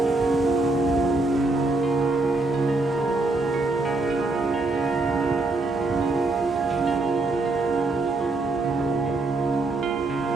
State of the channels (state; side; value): quieter; left; 3.1 dB